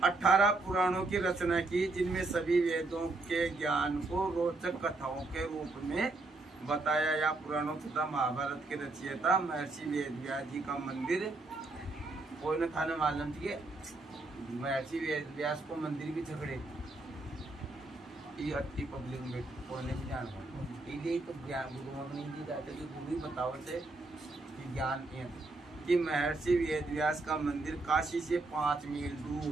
18 पुराणों की रचना की, जिनमें सभी वेदों के ज्ञान को रोचक कथाओं के रूप में बताया। या पुराणों तथा महाभारत के रचयिता महर्षि वेद व्यास जी का मंदिर कोई न था, मालूम थी महर्षि वेद व्यास को मंदिर भी झगड़े ये अति पब्लिक में कोई नहीं जान पाता, तो ज्ञान गुरुओं को नहीं दी जाते कि गुरु ही बताओ से कि ज्ञान कि महर्षि वेद व्यास का मंदिर काशी से 5 मील दूर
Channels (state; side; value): quieter; left; 3.2 dB